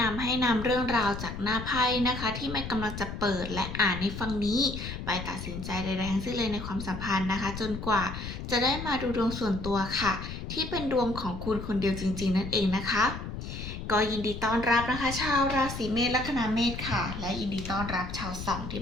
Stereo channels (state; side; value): noise; left; rumble, 7 dB below the sound